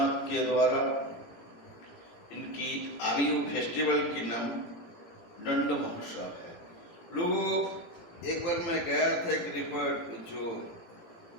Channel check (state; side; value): late; right; 17 ms